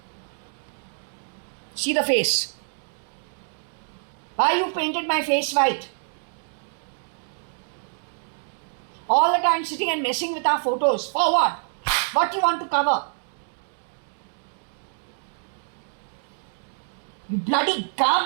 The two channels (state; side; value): silent; left; 61 dB below the other